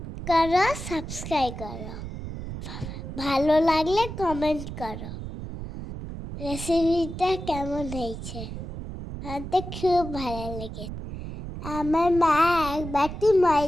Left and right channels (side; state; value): right; noise; rumble, 8 dB below the sound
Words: করো, সাবস্ক্রাইব করো, ভালো লাগলে কমেন্ট করো। রেসিপিটা কেমন হয়েছে? আমার খুব ভালো লেগেছে। আমার মা এক বাটি